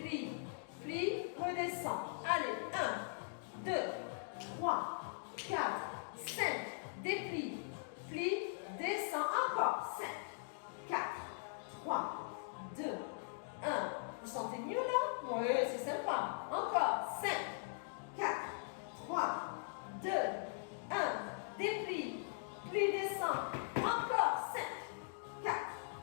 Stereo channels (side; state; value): right; silent; digital silence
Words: plie, redescend. Allez, 1, 2, 3, 4, 5. Déplie, plie, descend. Encore 5, 4, 3, 2, 1. Vous sentez mieux là? Oui, c'est sympa. Encore 5, 4, 3, 2, 1. Déplie, plie, descend. Encore 5, 4,